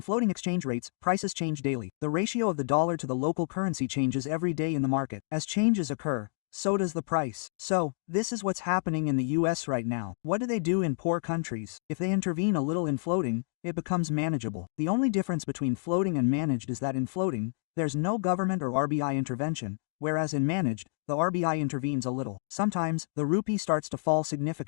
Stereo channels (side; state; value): right; silent; digital silence